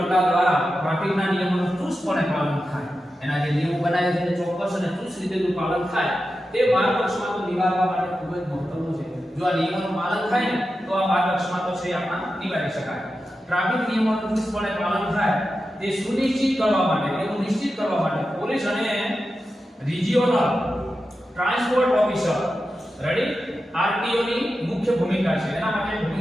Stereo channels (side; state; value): both; normal; correlation 0.91